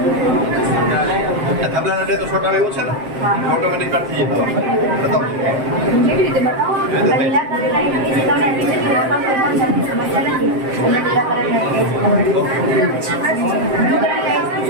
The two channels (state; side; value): late; left; 7.6 ms